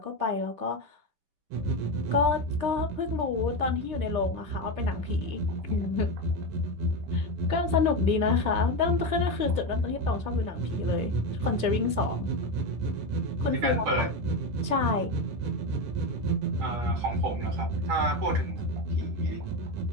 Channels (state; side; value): late; left; 10 ms